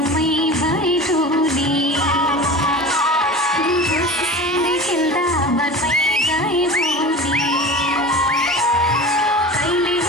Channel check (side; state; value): both; normal; correlation 0.34